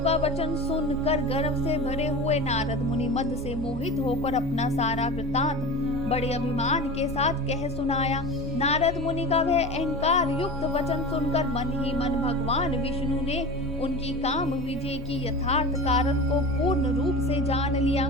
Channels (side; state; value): both; normal; correlation 0.30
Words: वचन सुनकर गर्व से भरे हुए नारद मुनि मद से मोहित होकर अपना सारा वृतांत बड़े अभिमान के साथ कह सुनाया। नारद मुनि का वह अहंकार युक्त वचन सुनकर मन ही मन भगवान विष्णु ने उनकी काम विजय की यथार्थ कारण को पूर्ण रूप से जान लिया।